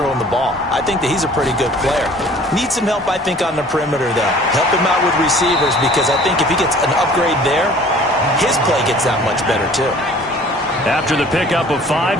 the ball. I think that he's a pretty good player. Needs some help, I think, on the perimeter, though. Help him out with receivers, because I think if he gets an upgrade there, his play gets that much better, too. After the pickup of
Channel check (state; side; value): normal; both; correlation 0.50